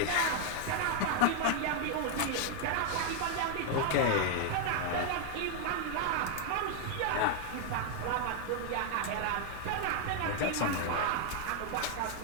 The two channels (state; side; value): different; both; correlation 0.00